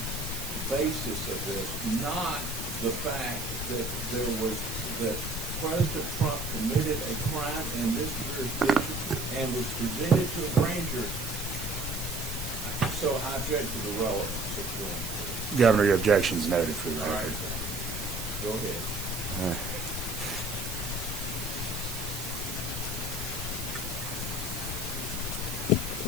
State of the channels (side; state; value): right; noise; hiss, 7 dB below the sound